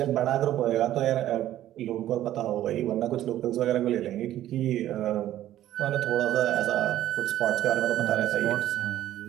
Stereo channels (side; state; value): left; quieter; 13.1 dB